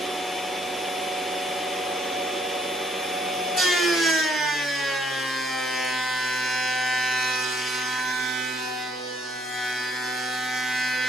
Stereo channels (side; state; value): both; normal; correlation 0.67